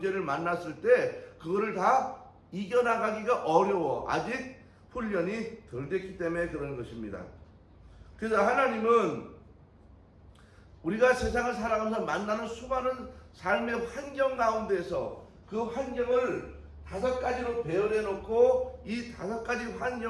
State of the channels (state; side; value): identical; both; correlation 1.00